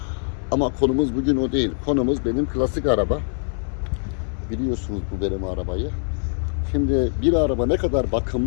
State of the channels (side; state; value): right; silent; 63 dB below the other